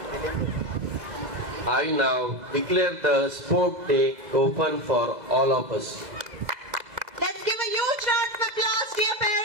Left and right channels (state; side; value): late; left; 2.0 ms